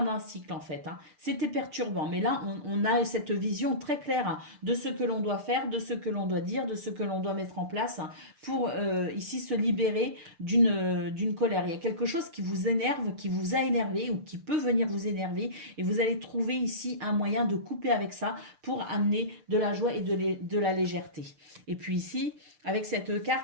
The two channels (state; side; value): late; left; 6.7 ms